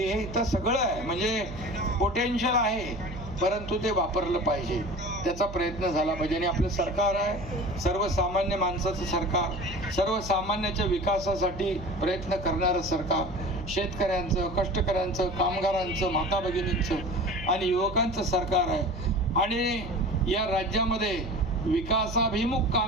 इथं सगळं आहे, म्हणजे पोटेन्शियल आहे, परंतु ते वापरलं पाहिजे, त्याचा प्रयत्न झाला पाहिजे. आणि आपलं सरकार आहे सर्वसामान्य माणसाचं सरकार, सर्वसामान्याच्या विकासासाठी प्रयत्न करणारं सरकार, शेतकऱ्यांचं, कष्टकऱ्यांचं, कामगारांचं, माता भगिनींचं आणि युवकांचं सरकार आहे. आणि या राज्यामध्ये विकासाभिमुख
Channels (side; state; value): right; noise; hum, 12 dB below the sound